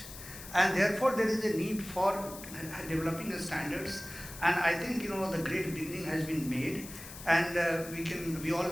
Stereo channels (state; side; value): noise; left; hiss, 13 dB below the sound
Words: And therefore there is a need for developing the standards, and I think the great beginning has been made, and we